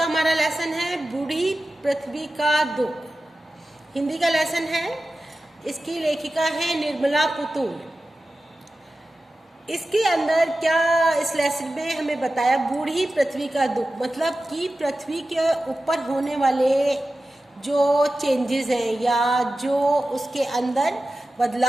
हमारा लेसन है बूढ़ी पृथ्वी का दुख। हिंदी का लेसन है। इसकी लेखिका है निर्मला पुतुल। इसके अंदर क्या इस लेसन में हमें बताया, बूढ़ी पृथ्वी का दुख मतलब कि पृथ्वी के ऊपर होने वाले जो चेंजेस हैं या जो उसके अंदर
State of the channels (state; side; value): normal; both; correlation 0.94